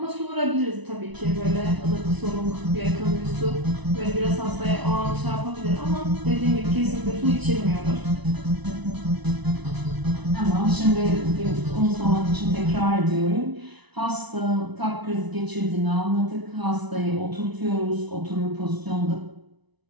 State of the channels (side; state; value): left; late; 1.0 ms